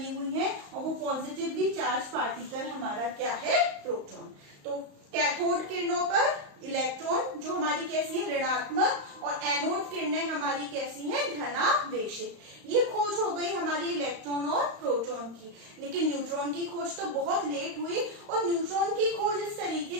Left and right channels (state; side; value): late; left; 35 ms